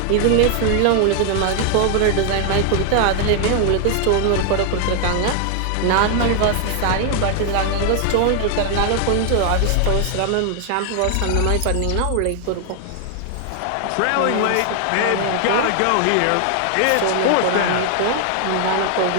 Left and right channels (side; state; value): both; different; correlation 0.00